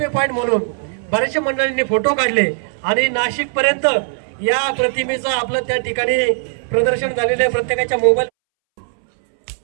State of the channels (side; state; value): left; silent; 65 dB below the other